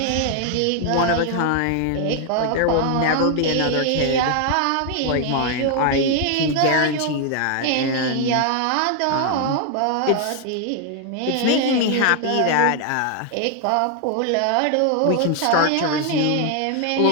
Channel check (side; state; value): both; different; correlation 0.00